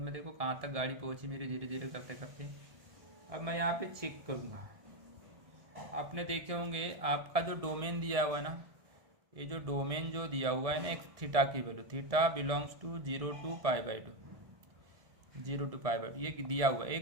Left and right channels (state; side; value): late; left; 1.7 ms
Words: देखो कहाँ तक गाड़ी पहुँची मेरी धीरे धीरे करते करते। अब मैं यहाँ पे चेक करूँगा, आपने देखे होंगे आपका जो डोमेन दिया हुआ है ना, ये जो डोमेन जो दिया हुआ है ना एक थीटा की value, theta belongs to 0 to π/2, 0 to π/2 ये दिया हुआ है।